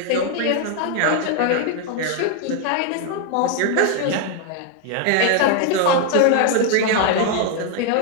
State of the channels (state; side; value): different; both; correlation 0.00